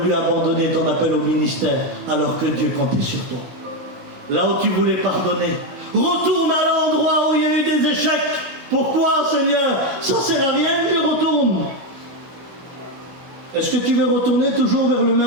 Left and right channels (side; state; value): left; late; 16 ms